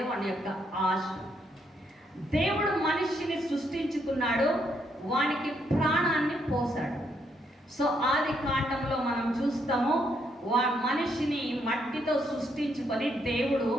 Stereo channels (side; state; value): both; normal; correlation 0.75